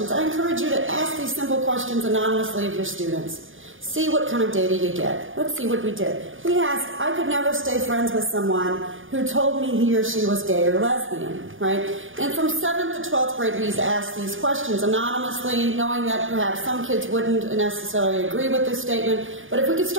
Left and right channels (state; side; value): late; left; 0.58 ms